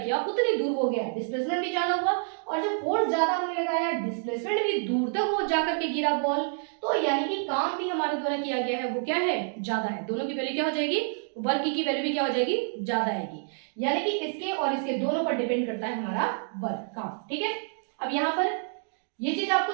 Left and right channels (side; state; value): left; silent; 59 dB below the other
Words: उतनी दूर हो गया, डिस्प्लेसमेंट भी ज्यादा हुआ, और जब फोर्स ज्यादा हमने लगाया, डिस्प्लेसमेंट भी दूर तक हो जाकर के गिरा बॉल, तो यानी कि काम भी हमारे द्वारा किया गया है वो क्या है, ज्यादा है। दोनों की वैल्यू क्या हो जाएगी, वर्क की वैल्यू भी क्या हो जाएगी, ज्यादा आएगी, यानी कि इसके और इसके दोनों पर डिपेंड करता है हमारा वर्क, काम। ठीक है, अब यहाँ पर ये चीज आपको